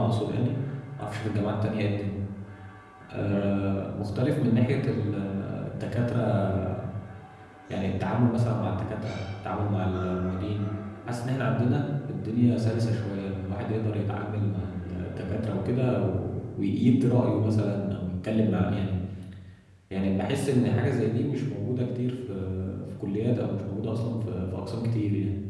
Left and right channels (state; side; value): identical; both; correlation 1.00